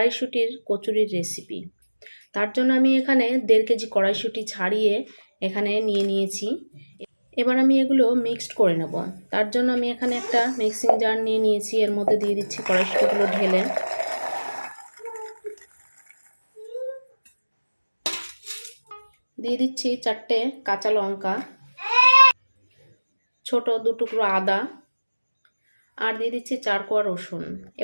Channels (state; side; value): inverted; both; correlation -1.00